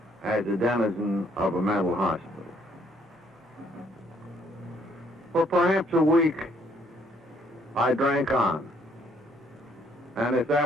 as a denizen of a mental hospital. For perhaps a week, I drank on. And if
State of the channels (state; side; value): normal; both; correlation 0.66